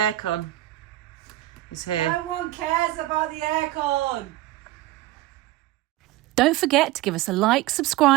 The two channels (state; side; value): quieter; left; 16.3 dB